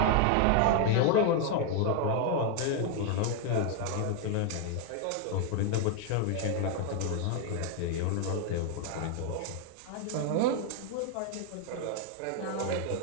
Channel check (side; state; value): both; different; correlation 0.01